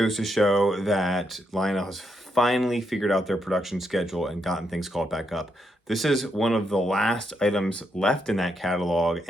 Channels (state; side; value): normal; both; correlation 0.80